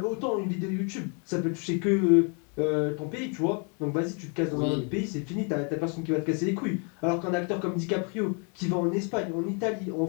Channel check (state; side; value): quieter; right; 37.3 dB